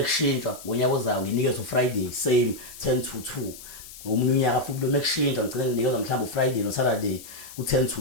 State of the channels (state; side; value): noise; left; hiss, 16 dB below the sound